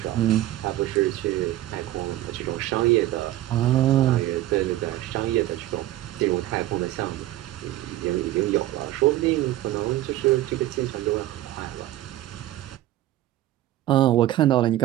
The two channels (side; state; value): left; quieter; 14.7 dB